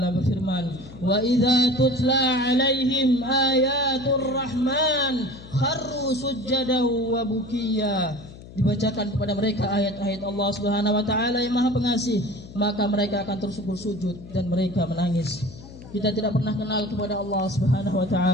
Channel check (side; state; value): left; noise; hum, 17 dB below the sound